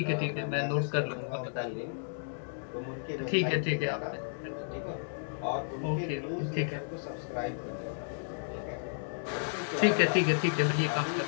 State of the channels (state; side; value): silent; right; digital silence